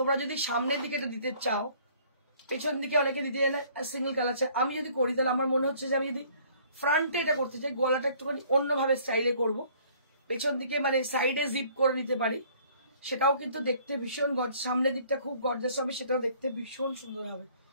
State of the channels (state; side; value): inverted; both; correlation -0.57